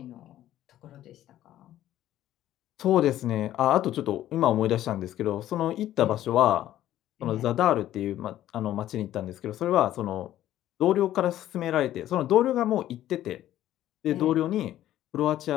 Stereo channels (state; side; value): quieter; right; 13.0 dB